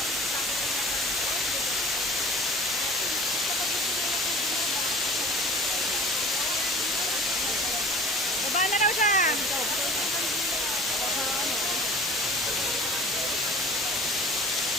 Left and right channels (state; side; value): normal; both; correlation 0.42